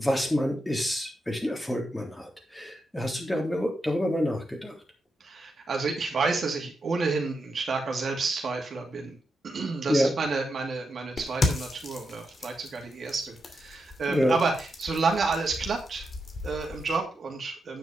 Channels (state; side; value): normal; both; correlation 0.85